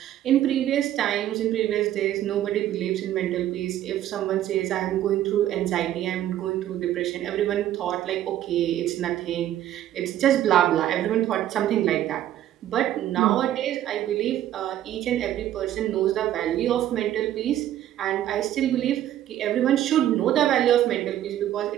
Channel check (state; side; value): quieter; left; 12.3 dB